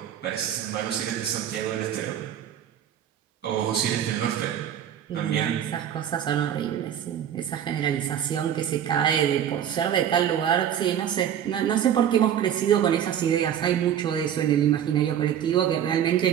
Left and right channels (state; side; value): quieter; left; 9.8 dB